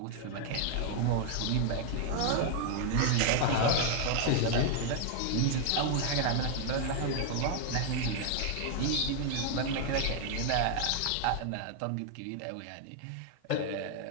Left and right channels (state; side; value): different; both; correlation 0.00